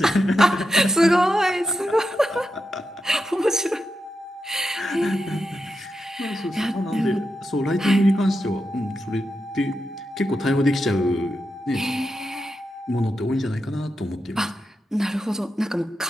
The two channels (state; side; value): normal; both; correlation 0.87